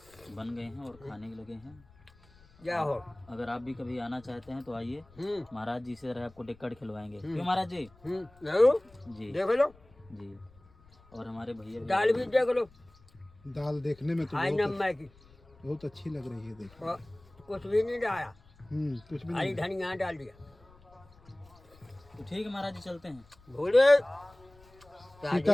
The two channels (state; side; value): noise; left; rumble, 27 dB below the sound